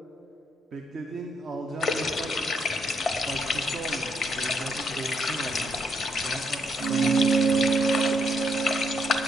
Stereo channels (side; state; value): both; normal; correlation 0.74